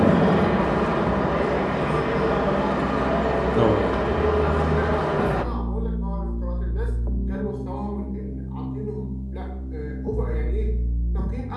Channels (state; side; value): identical; both; correlation 1.00